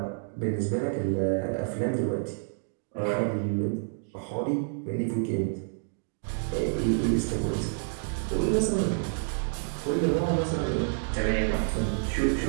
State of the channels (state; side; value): silent; left; digital silence